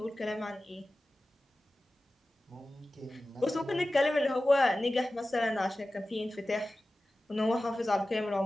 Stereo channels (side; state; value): both; normal; correlation 0.96